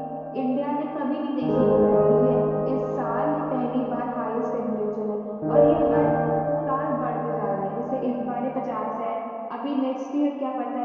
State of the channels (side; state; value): both; identical; correlation 1.00